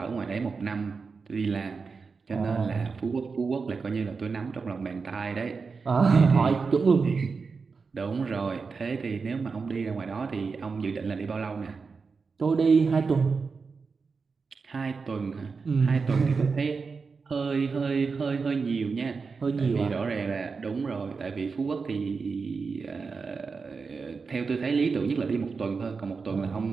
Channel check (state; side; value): quieter; left; 4.9 dB